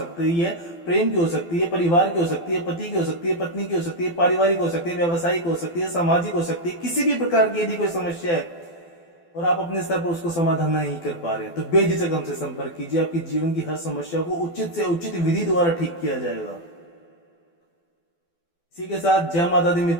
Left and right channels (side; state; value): right; late; 12 ms